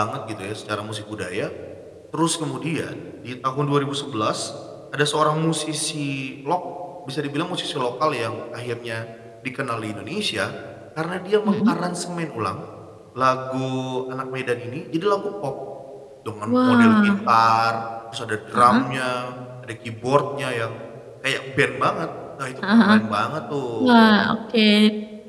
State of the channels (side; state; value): both; identical; correlation 1.00